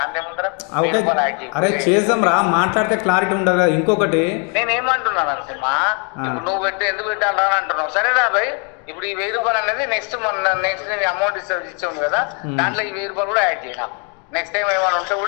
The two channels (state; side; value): quieter; right; 37.3 dB